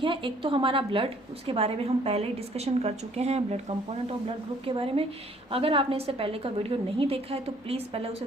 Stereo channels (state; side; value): normal; both; correlation 0.60